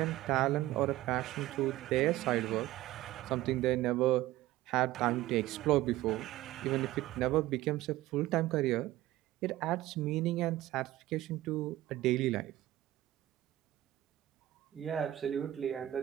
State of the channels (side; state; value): left; quieter; 15.7 dB